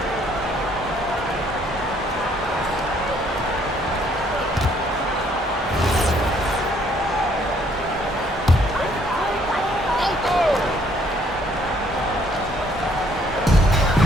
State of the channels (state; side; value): normal; both; correlation 0.65